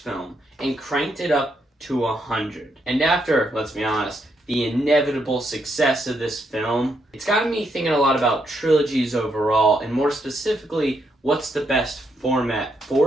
film and cranked it up to 100. And after, let's be honest, the inevitable success of this film, it's gotten me thinking a lot about trilogies overall, and more specifically, what's the best format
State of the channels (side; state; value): both; normal; correlation 0.78